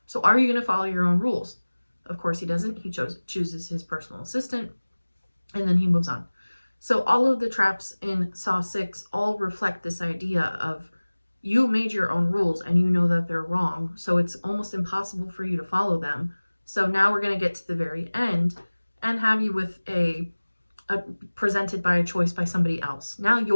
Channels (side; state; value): both; inverted; correlation -1.00